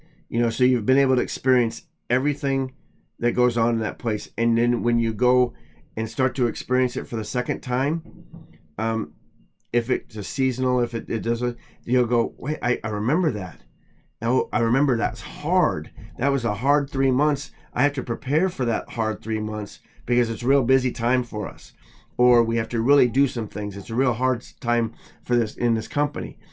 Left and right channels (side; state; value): both; identical; correlation 1.00